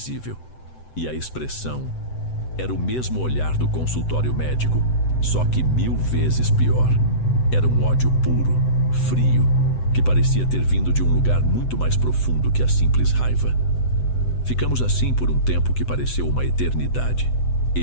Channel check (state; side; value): late; right; 7.9 ms